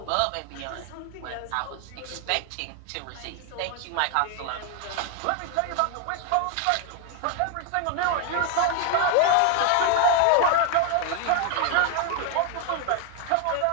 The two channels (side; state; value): both; different; correlation 0.00